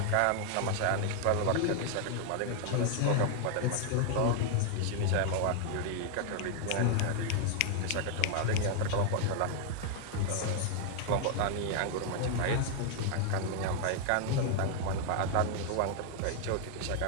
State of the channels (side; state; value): both; different; correlation 0.00